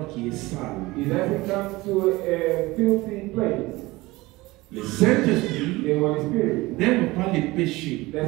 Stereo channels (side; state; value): left; quieter; 20.7 dB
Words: qui est sale. it doesn't come to a filthy place. Le Saint-Esprit The Holy Spirit n'aime pas les péchés.